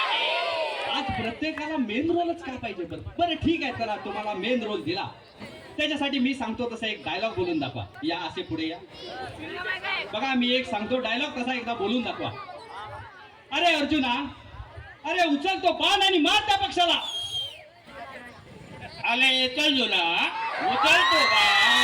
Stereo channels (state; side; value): identical; both; correlation 1.00